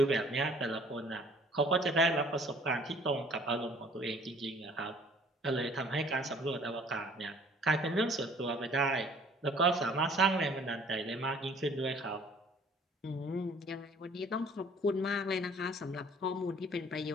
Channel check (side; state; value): both; normal; correlation 0.55